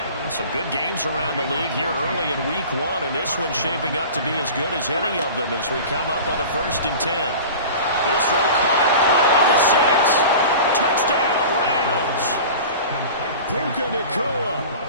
Some good games around the league here early in week 1, and this one's shaping up to be as good as any of them as we come up on a 1st and 10. This throw caught right around the 6. Touchdown, Rams. Puka Nakua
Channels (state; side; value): inverted; both; correlation -0.37